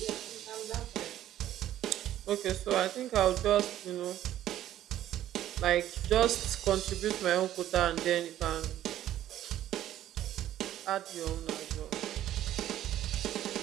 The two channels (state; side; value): quieter; left; 12.5 dB